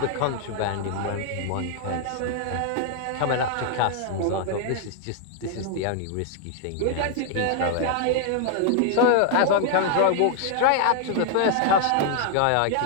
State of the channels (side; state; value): both; different; correlation 0.00